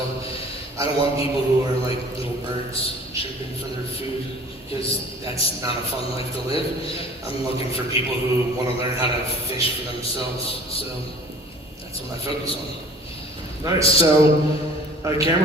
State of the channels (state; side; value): normal; both; correlation 0.48